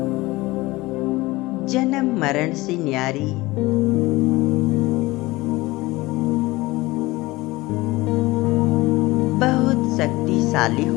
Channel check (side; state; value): right; quieter; 20.5 dB